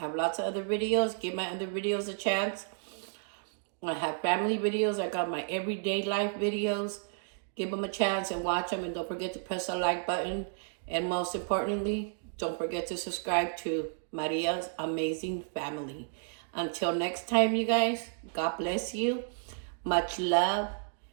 lots of other videos. Give my other videos a chance. I have family videos. I got my everyday life videos. Give them a chance and watch them, and don't forget to press the like button. And most importantly, don't forget to subscribe to Maria's Amazing Family. Until next time, you guys, God bless you. Much love.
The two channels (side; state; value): left; silent; digital silence